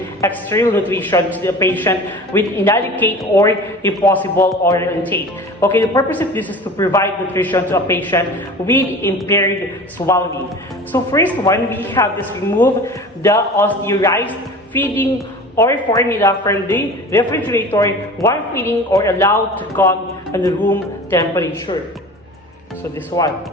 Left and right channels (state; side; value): normal; both; correlation 0.38